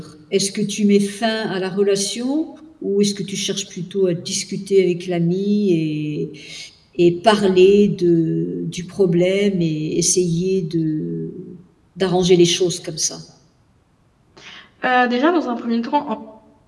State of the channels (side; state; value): both; identical; correlation 1.00